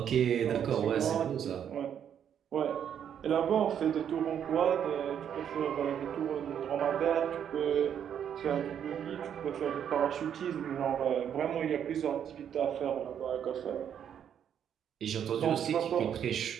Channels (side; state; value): left; quieter; 8.9 dB